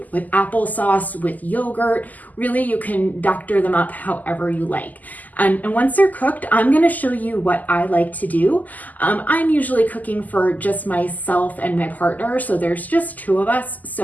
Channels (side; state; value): right; late; 0.081 ms